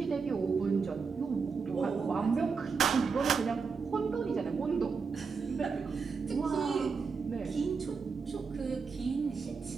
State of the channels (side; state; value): left; quieter; 5.2 dB